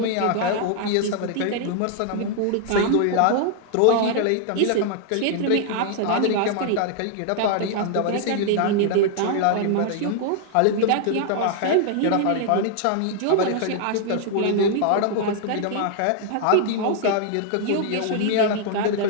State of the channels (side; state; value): both; different; correlation 0.00